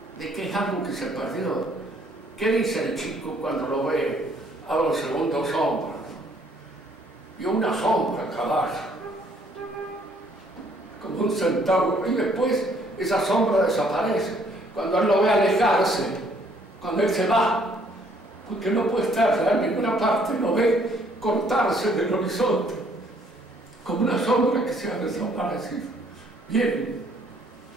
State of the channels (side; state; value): both; normal; correlation 0.64